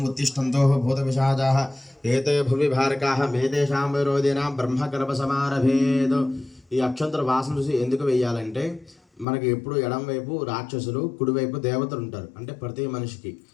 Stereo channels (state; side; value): drops out; right; at 9.2 s